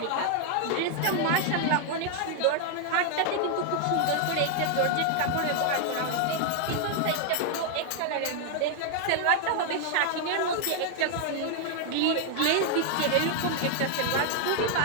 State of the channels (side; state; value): both; different; correlation 0.00